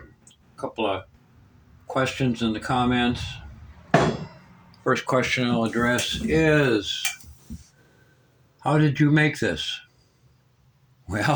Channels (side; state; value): both; identical; correlation 1.00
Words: couple of questions in the comments. First question I'll address is, how did you make this?